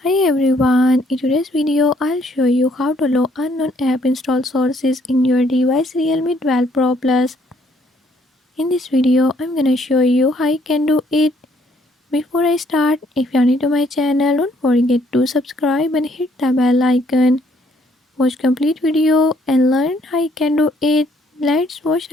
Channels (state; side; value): normal; both; correlation 0.66